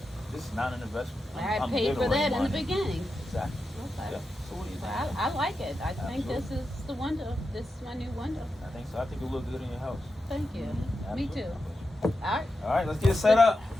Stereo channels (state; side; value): normal; both; correlation 0.89